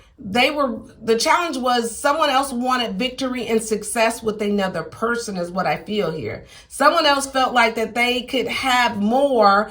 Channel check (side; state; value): both; identical; correlation 1.00